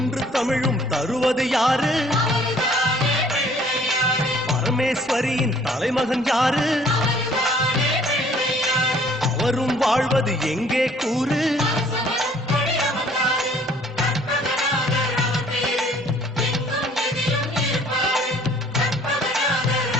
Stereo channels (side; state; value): both; normal; correlation 0.58